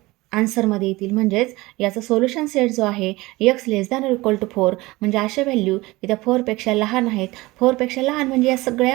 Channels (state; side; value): quieter; left; 20.8 dB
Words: आन्सरमध्ये येतील. म्हणजेच याचा सोल्युशन सेट जो आहे x less than equal to 4, म्हणजे अशा व्हॅल्यू की त्या 4पेक्षा लहान आहेत. 4पेक्षा लहान म्हणजे या